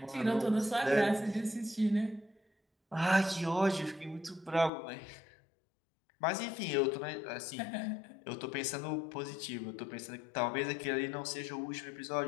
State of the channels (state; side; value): drops out; right; at 4.7 s